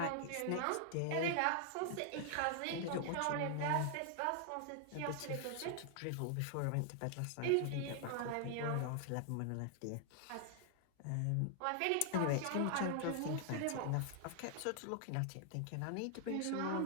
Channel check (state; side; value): different; both; correlation 0.00